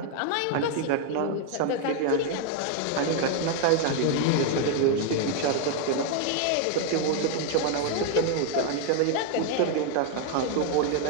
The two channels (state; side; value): different; both; correlation 0.00